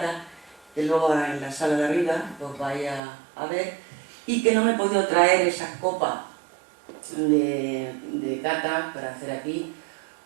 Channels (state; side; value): drops out; left; at 3.0 s